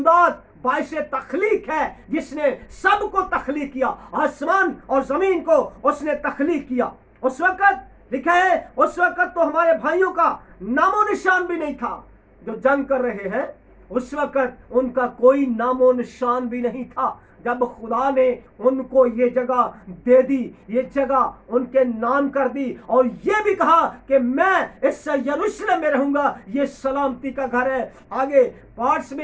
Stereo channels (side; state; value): both; identical; correlation 1.00